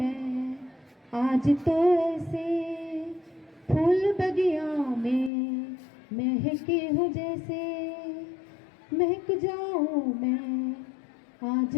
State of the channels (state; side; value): drops out; right; at 5.3 s